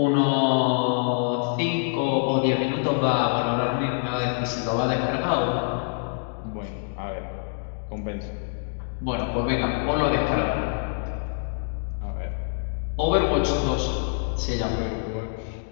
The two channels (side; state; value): right; silent; digital silence